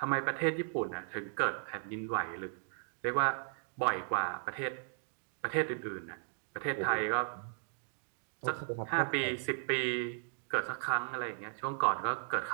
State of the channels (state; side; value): silent; left; digital silence